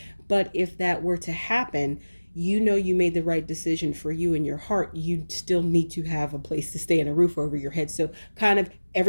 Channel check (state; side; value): inverted; both; correlation -1.00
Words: But if that were to happen, you made the right decision for you in your heart. You still need to have a place to stay and a roof over your head. So kind of